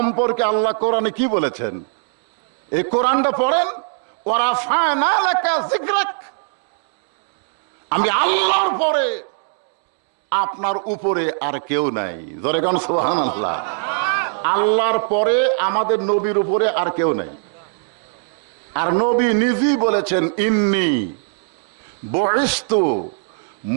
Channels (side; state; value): left; silent; digital silence